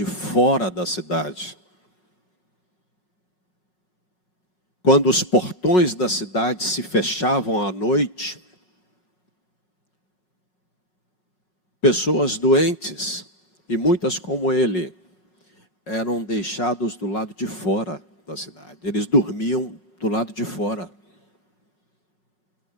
fora da cidade. Quando os portões da cidade se fechavam à noite, pessoas doentes, e muitas como ele, eram deixados do lado de fora da cidade. Eles dormiam do lado de fora.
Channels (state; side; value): late; right; 4.9 ms